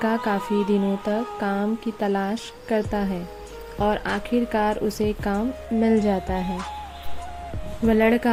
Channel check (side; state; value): both; identical; correlation 1.00